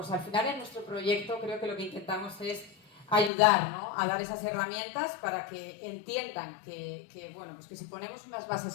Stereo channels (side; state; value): right; drops out; at 3.3 s